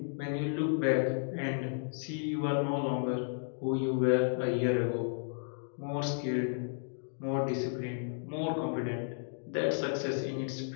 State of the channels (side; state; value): right; silent; digital silence